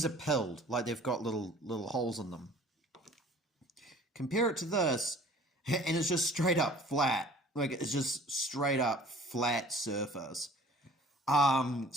are pilled, like they've got little holes in them. Compare it to this, and it's just straight up flat. Like it's just straight up flat surface.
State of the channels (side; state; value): both; normal; correlation 0.50